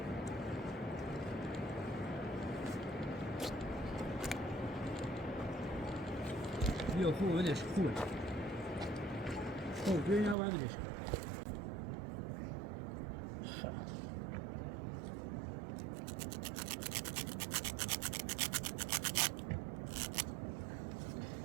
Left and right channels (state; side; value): drops out; left; at 10.4 s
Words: بیا خوبه بدش خوبه خوب بیا اینا بدش